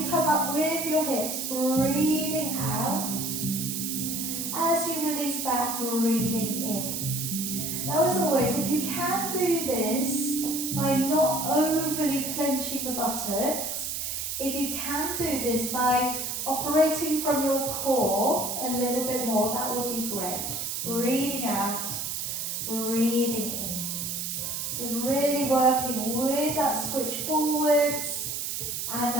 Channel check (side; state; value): right; noise; hiss, 3 dB below the sound